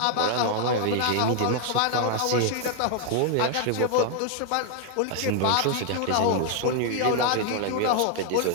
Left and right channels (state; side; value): different; both; correlation 0.00